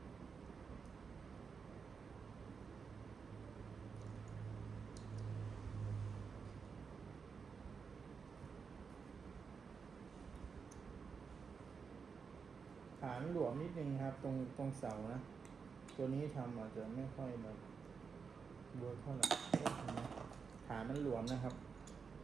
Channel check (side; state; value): left; quieter; 5.6 dB